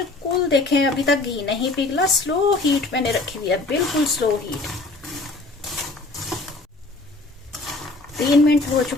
देखें अभी तक घी नहीं पिघला, स्लो हीट मैंने रखी हुई है, बिल्कुल स्लो हीट। 3 मिनट हो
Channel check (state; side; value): quieter; right; 3.2 dB